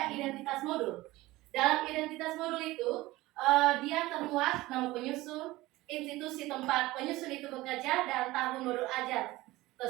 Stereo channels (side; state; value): left; quieter; 18.7 dB